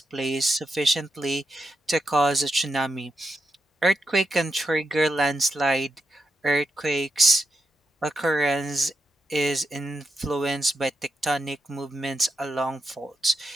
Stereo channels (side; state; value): both; normal; correlation 0.85